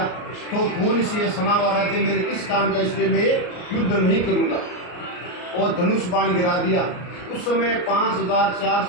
तो खून से सना हुआ राज्य मेरे किस काम का, इसलिए मैं युद्ध नहीं करूंगा। और धनुष बाण गिरा दिया। उस समय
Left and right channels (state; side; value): late; right; 33 ms